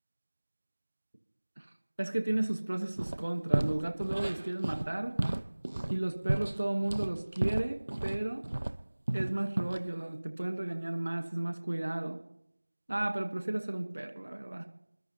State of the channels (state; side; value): inverted; both; correlation -1.00